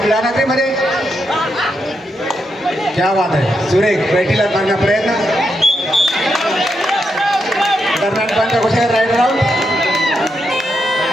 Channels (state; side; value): normal; both; correlation 0.82